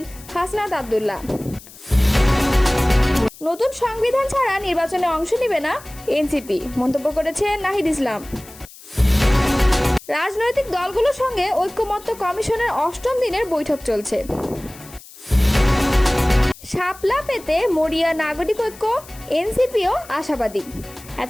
হাসনাত আব্দুল্লাহ। নতুন সংবিধান ছাড়া নির্বাচনে অংশ নেবে না এনসিপি, মন্তব্য করেছেন নাহিদ ইসলাম। রাজনৈতিক দলগুলোর সঙ্গে ঐক্যমত্য কমিশনের ৮ম দিনের বৈঠক চলছে। শাপলা পেতে মরিয়া নাগরিক ঐক্য, এনসিপিও আশাবাদী।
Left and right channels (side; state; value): left; noise; hiss, 20 dB below the sound